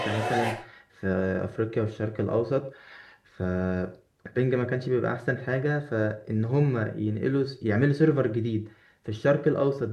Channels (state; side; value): identical; both; correlation 1.00